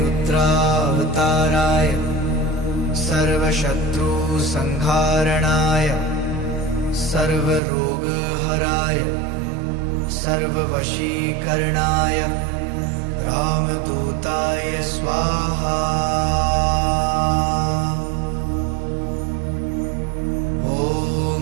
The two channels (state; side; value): drops out; left; at 7.6 s